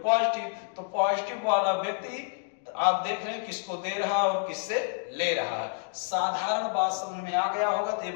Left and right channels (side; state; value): right; silent; digital silence